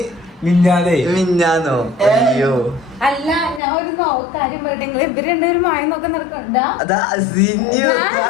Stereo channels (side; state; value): right; drops out; at 3.6 s